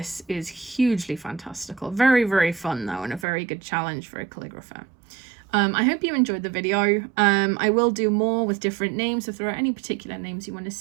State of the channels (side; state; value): left; drops out; at 3.2 s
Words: is hugely fantastical. Very, very fun though, and a very good challenge for a calligrapher. I hope you enjoyed the video. I will do more with different names. If there are any particular names you want to